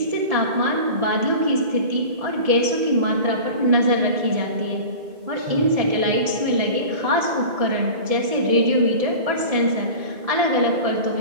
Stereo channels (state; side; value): late; left; 1.7 ms